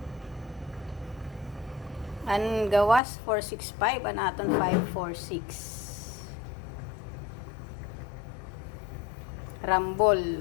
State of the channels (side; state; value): right; drops out; at 3.0 s